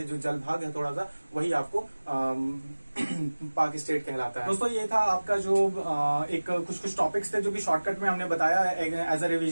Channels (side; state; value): both; inverted; correlation -1.00